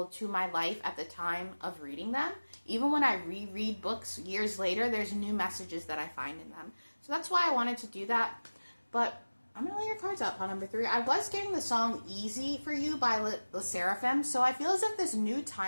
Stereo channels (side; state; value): both; inverted; correlation -1.00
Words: to my life at the time of reading them. Even when I reread books years later, there's new messages that I find in them. So that's why I wanted to do that. But I'm going to lay your cards out, pile number 3. I was getting the song Easy for You by the Seraphim, so I feel as if this new